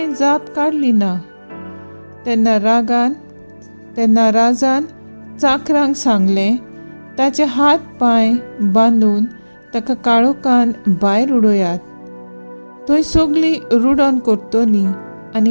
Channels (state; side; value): inverted; both; correlation -1.00